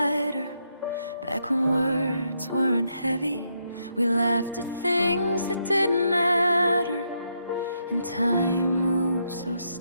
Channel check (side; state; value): both; inverted; correlation -0.78